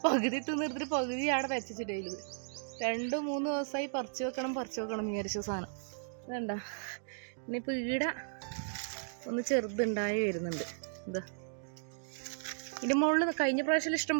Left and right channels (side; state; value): left; silent; digital silence